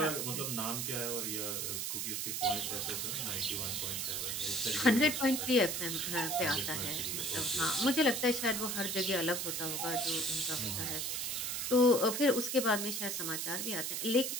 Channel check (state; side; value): noise; right; hiss, 1 dB below the sound